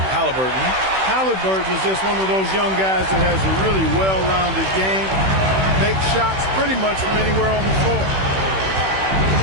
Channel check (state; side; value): late; left; 16 ms